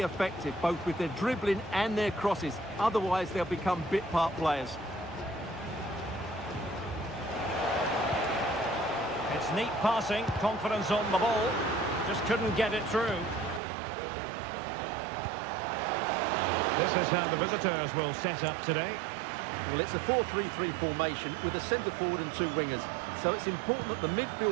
effective, both with their dribbling and their crosses. Otherwise, they'll become bit-part players. It's neat passing, confidence on the ball. Just couldn't get it through. This is how the visitors will set up today. Well, it's a 4-3-3 formation with a centre-forward and two wingers. So it's important that the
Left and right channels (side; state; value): left; drops out; at 13.6 s